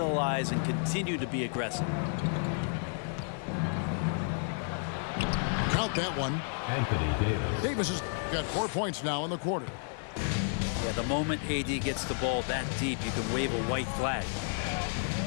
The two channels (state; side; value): silent; right; 57 dB below the other